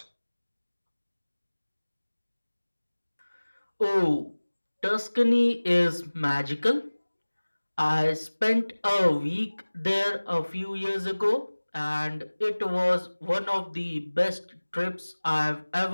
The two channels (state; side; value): inverted; both; correlation -1.00